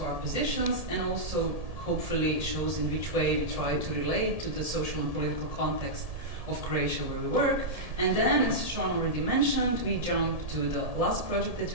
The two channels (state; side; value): late; left; 1.7 ms